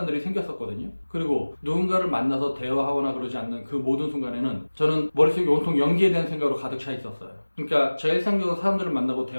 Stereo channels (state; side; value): inverted; both; correlation -1.00